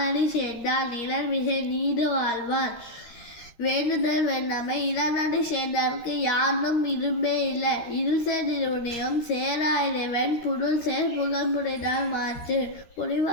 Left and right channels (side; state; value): right; late; 13 ms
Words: சேர்ந்தான் நிழல்மிசை நீடு வாழ்வான். வேண்டுதல் வேண்டாமை இளநடி சேர்ந்தார்க்கு யானும் இரும்பே இல்லை. இருள்சேர் நிறுவனியம் சேரா இறைவன் புருள் சேர் புகழ்முறைதான் மாற்று.